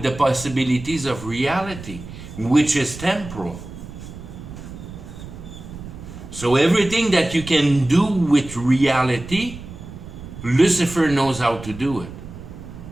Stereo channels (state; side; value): noise; right; rumble, 13 dB below the sound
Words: the possibilities of reality, which is temporal. So everything that you can do with reality, Lucifer knows how to do it.